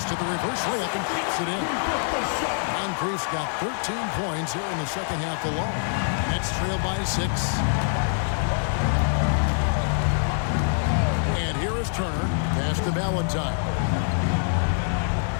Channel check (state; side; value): silent; right; digital silence